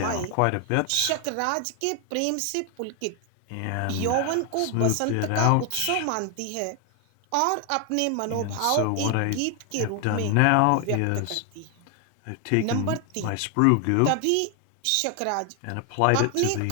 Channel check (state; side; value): different; both; correlation 0.00